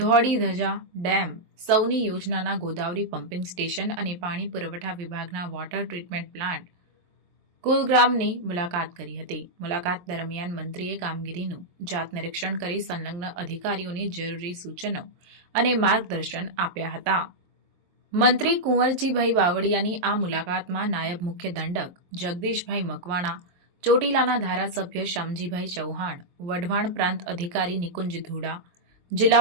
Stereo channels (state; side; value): late; left; 23 ms